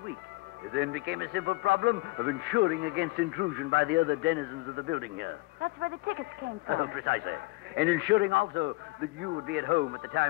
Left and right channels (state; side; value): quieter; right; 22.0 dB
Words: week. It then became a simple problem of ensuring against intrusion by the other denizens of the building here. That's where the tickets came from. Precisely. And ensuring also that you would be at home at the